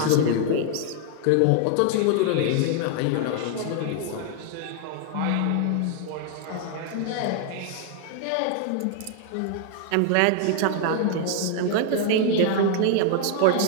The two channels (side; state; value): both; different; correlation 0.00